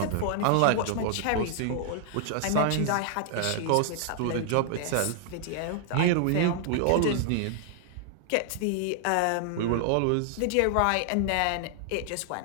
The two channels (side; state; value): both; different; correlation 0.00